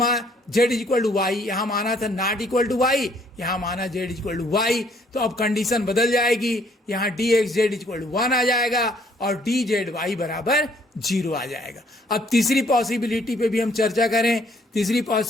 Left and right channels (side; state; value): both; normal; correlation 0.64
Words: z is equal to y, यहां माना था नॉट इक्वल टू वाई, यहां माना z is equal to y. तो अब कंडीशन बदल जाएगी, यहां dx z is equal to 1 आ जाएगा और dz y बराबर 0 आ जाएगा। अब तीसरी पॉसिबिलिटी पे भी हम चर्चा करें। तीसरी